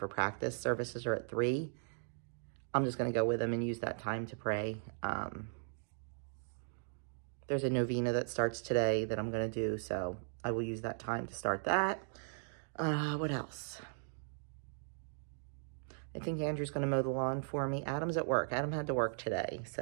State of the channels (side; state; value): left; silent; digital silence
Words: practice. Services are at 3. I'm just going to go with him and use that time to pray. There's a novena that starts today that I'm going to do, so I will use that time to start that. What else? I think Andrew's going to mow the lawn for me. Adam's at work. Adam had to work today,